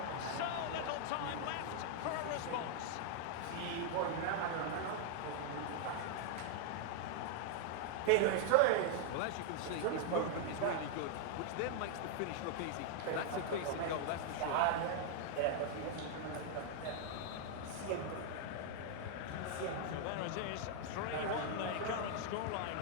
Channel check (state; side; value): different; both; correlation 0.00